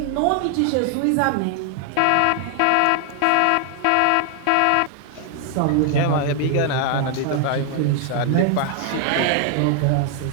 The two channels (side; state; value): both; different; correlation 0.00